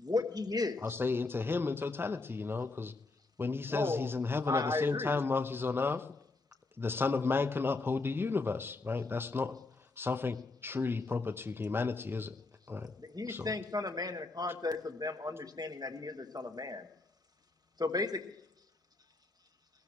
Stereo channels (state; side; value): quieter; right; 3.5 dB